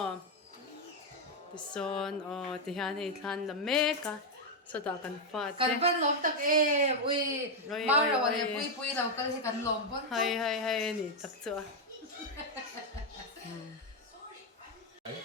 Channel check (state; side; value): normal; both; correlation 0.01